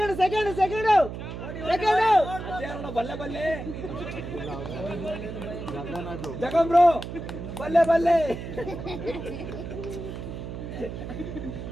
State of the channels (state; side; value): noise; right; hum, 8 dB below the sound